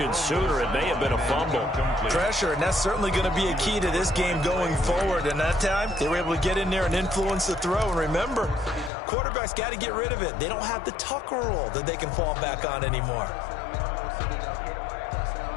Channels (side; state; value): right; drops out; at 8.9 s